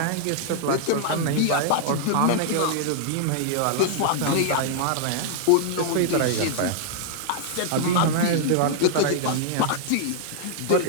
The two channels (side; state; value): both; different; correlation -0.01